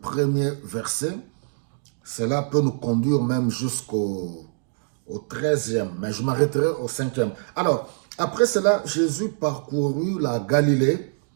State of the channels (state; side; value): silent; left; digital silence